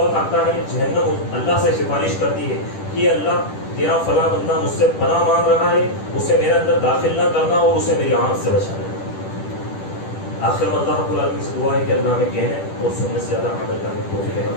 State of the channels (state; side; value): late; right; 10 ms